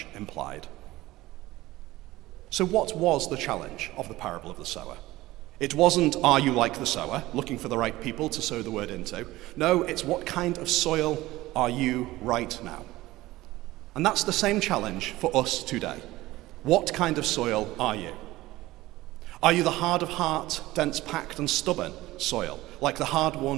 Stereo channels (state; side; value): quieter; left; 17.8 dB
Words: implied. So what was the challenge of the parable of the sower? It wasn't, are you like the sower, looking for the right people to sow the word into. No, it's what kind of soil are you right now? And that's the same challenge for us today. What kind of soil are you? Are you the hard of heart, dense packed and stubborn soil, like the